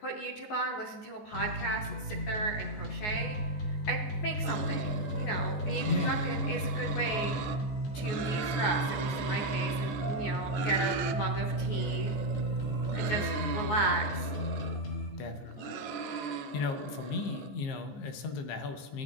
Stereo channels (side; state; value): right; late; 14 ms